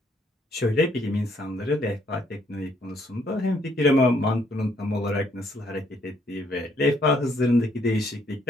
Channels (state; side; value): normal; both; correlation 0.69